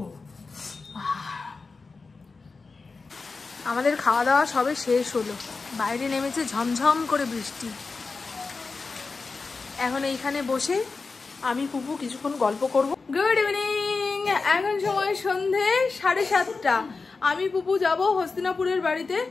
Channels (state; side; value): quieter; right; 4.2 dB